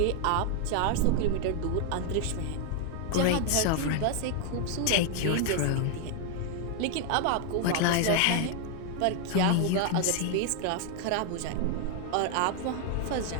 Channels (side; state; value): both; different; correlation 0.00